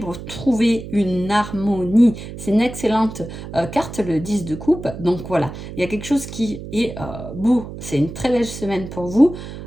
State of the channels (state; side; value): noise; right; hum, 11 dB below the sound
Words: trouvé, une harmonie. C'est une excellente carte, le 10 de coupe. Donc voilà, il y a quelque chose qui est beau. C'est une très belle semaine pour vous.